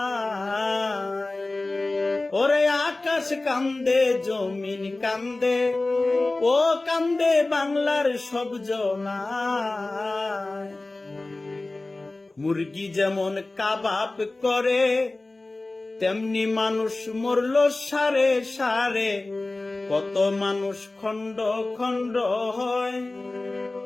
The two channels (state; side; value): quieter; right; 3.0 dB